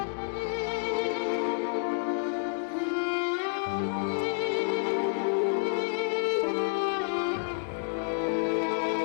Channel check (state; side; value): silent; right; 58 dB below the other